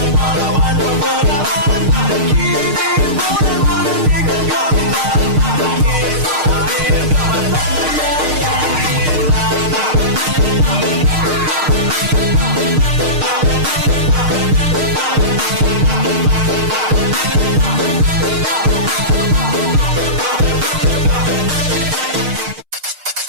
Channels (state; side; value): late; left; 6.5 ms